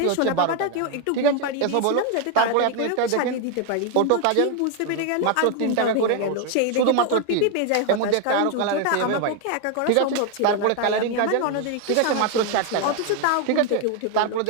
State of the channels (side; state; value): both; different; correlation 0.01